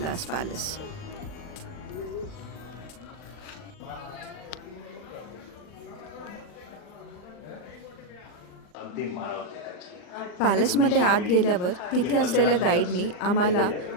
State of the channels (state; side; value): late; right; 39 ms